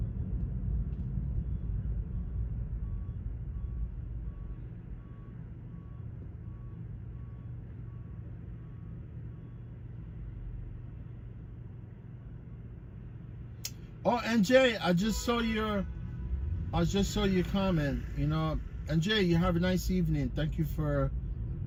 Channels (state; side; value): identical; both; correlation 1.00